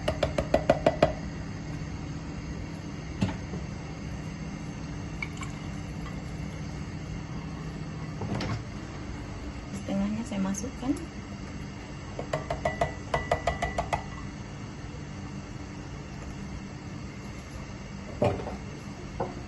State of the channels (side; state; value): both; identical; correlation 1.00